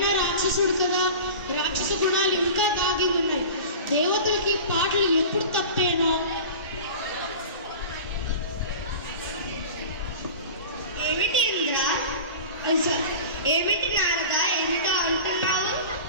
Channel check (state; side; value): inverted; both; correlation -0.35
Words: రాక్షసుడు కదా, రాక్షస గుణాలు ఇంకా దాగి ఉన్నాయి. దేవతలకి పాటలు ఎప్పుడు తప్పేనో. ఏమిటి ఇంద్ర, ఏమిటి నారద, ఏమిటో అంటున్నావు?